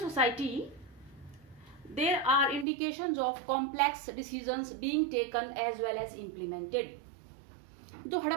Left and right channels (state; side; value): drops out; left; at 2.7 s